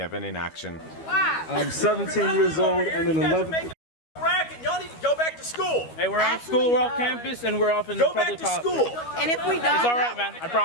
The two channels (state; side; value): late; right; 12 ms